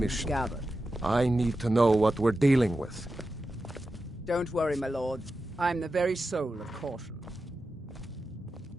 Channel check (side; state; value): both; normal; correlation 0.91